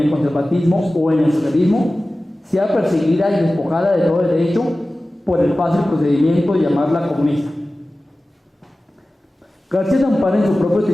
conservatismo o en el socialismo, sea perseguida y despojada de todo derecho por el fácil procedimiento de llamarla comunista. García se ampara en su propio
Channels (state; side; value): normal; both; correlation 0.96